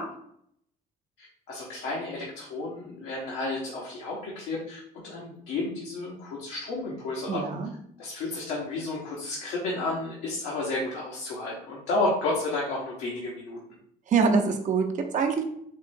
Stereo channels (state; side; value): normal; both; correlation 0.37